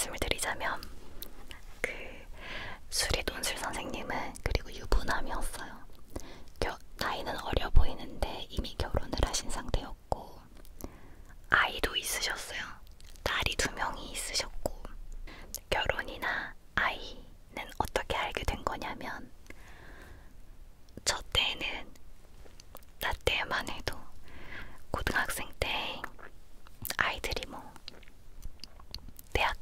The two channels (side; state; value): both; identical; correlation 1.00